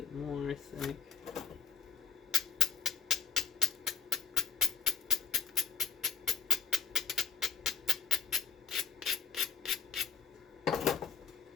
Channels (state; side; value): quieter; right; 7.1 dB